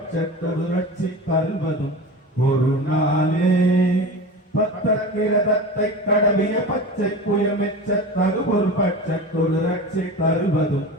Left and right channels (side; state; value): both; normal; correlation 0.30